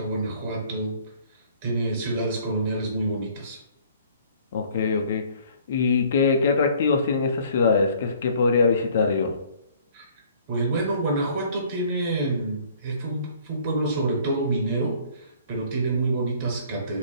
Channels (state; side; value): inverted; both; correlation -0.56